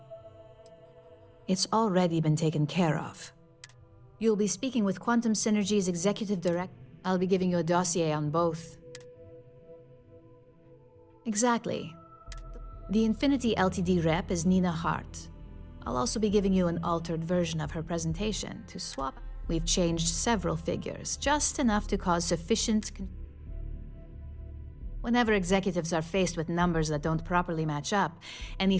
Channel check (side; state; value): both; identical; correlation 1.00